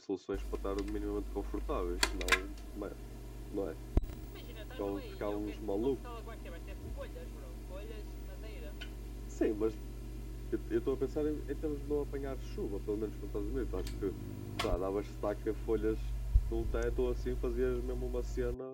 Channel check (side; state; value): both; identical; correlation 1.00